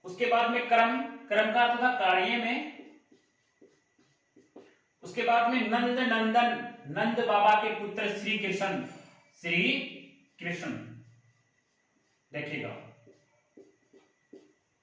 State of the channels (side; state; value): both; identical; correlation 1.00